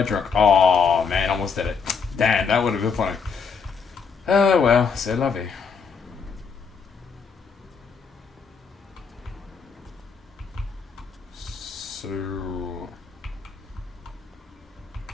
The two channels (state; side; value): quieter; right; 5.7 dB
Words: drunk... Oh, man, almost did it. Damn, that would have been funny. Well, c'est la vie. So...